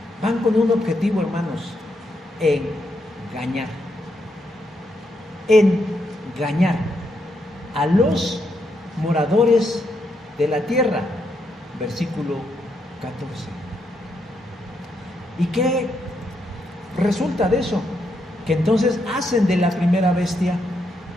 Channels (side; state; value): both; normal; correlation 0.79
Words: van con un objetivo, hermanos, engañar a los moradores de la tierra. Versículo 14. ¿Y qué resulta de eso? Que entonces hacen de la primera bestia